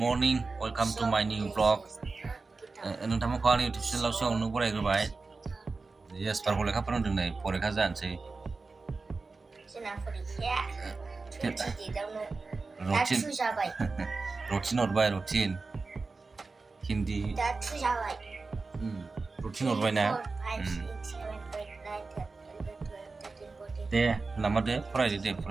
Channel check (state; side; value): quieter; left; 3.9 dB